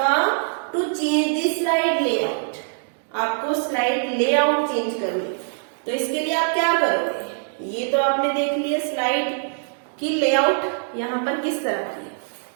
to change the slide layout. आपको स्लाइड लेआउट चेंज करनी, तो इसके लिए आप क्या करोगे, ये तो आपने देख लिया स्लाइड की लेआउट यहाँ पर किस तरह की,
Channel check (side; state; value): left; silent; digital silence